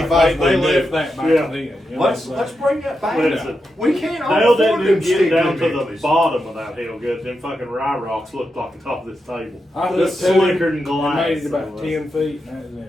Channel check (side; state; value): both; normal; correlation 0.87